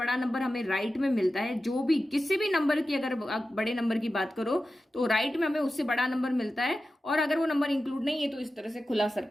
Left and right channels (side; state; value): both; normal; correlation 0.93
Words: नंबर हमें राइट में मिलता है। जो भी किसी भी नंबर की अगर आप बड़े नंबर की बात करो तो राइट में हमें उससे बड़ा नंबर मिलता है, और अगर वो नंबर इंक्लूड नहीं है तो इस तरह से खुला